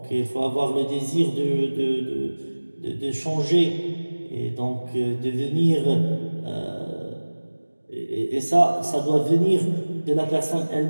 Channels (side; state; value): both; inverted; correlation -1.00